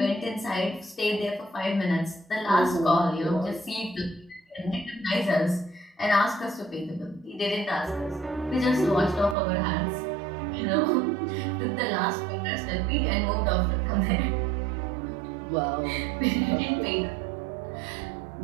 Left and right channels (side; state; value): left; drops out; at 9.3 s